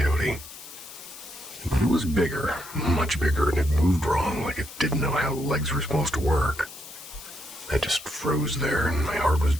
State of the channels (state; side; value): noise; left; hiss, 15 dB below the sound